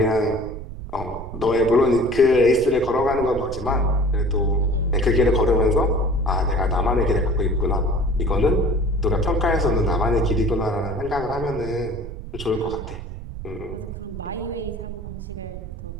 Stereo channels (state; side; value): noise; right; rumble, 10 dB below the sound